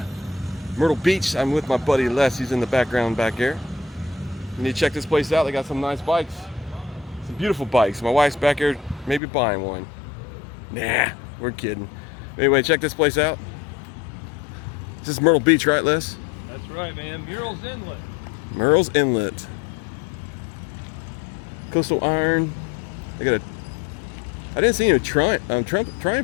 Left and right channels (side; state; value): right; drops out; at 9.2 s